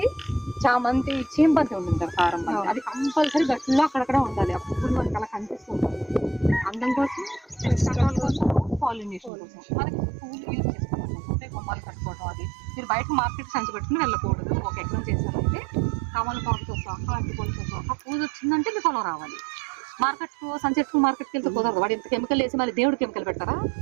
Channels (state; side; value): drops out; left; at 9.3 s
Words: చామంతి, చీంబంతి ఉంటుంది కారం బంతి, అది కంపల్సరీ గట్టిలో అక్కడక్కడ ఉండాలి. ఆ పువ్వులు మనకి అలా కనిపిస్తుంటారు. అందం కోసం, రకాల కోసం, పాలినేషన్ కోసం మనకి పువ్వులు యూజ్ చేసుకోవాలి. అంటే గుమ్మాలు కట్టుకోవడం. అది మీరు బయట మార్కెట్ సంచి పెట్టుకుని వెళ్ళకూడదు. ఒక ఎకరం చేశారంటే తమలపాకుతో సహా, అరటిపళ్ళతో సహా పూజ వచ్చిందంటే మీకు పొలం రావాలి. మార్కెట్కి వెళ్తే కుదరదు. వాడు ఇంత కెమికల్ వేసి మళ్ళీ దేవుడు కెమికల్ పెట్టారా?